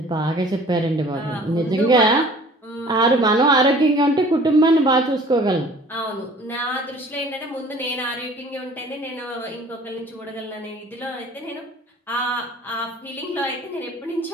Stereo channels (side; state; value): both; normal; correlation 0.49